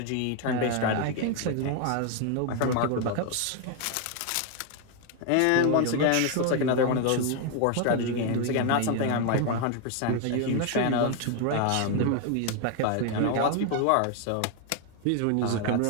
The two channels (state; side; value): different; both; correlation 0.01